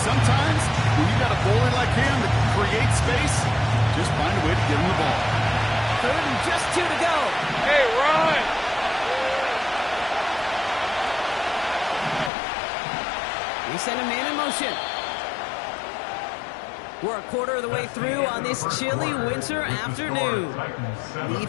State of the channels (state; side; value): drops out; right; at 12.3 s